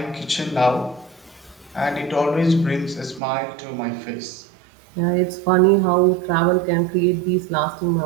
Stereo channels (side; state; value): left; drops out; at 3.2 s